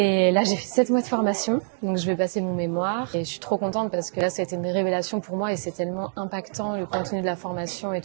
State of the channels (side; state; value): left; silent; digital silence